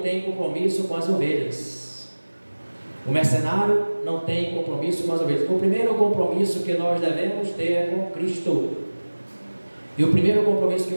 compromisso com as ovelhas. O mercenário não tem compromisso com as ovelhas. O primeiro compromisso que nós devemos ter é com Cristo. E o primeiro compromisso que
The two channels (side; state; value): both; inverted; correlation -1.00